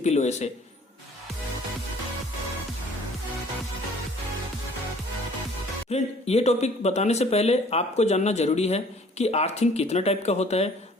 वे से। फ्रेंड, ये टॉपिक बताने से पहले आपको जानना जरूरी है कि अर्थिंग कितना टाइप का होता है,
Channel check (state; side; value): normal; both; correlation 0.54